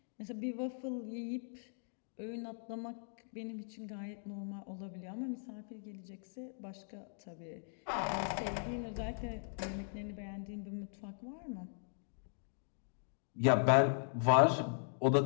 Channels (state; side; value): silent; right; digital silence